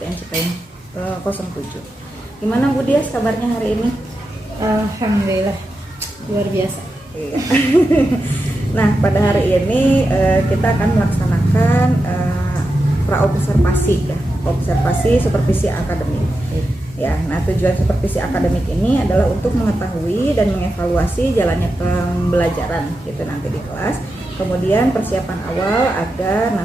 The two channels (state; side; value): normal; both; correlation 0.89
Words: Cipayung 07. Gimana Bu Dias kabarnya hari ini? Alhamdulillah, luar biasa. Iya. Nah, pada hari ini kita akan melaksanakan praobservasi ya, observasi supervisi akademik. Ya, nah tujuan supervisi akademik ini adalah untuk mengetahui dan mengevaluasi jalannya pembelajaran gitu nanti di kelas. Kemudian persiapan awal agar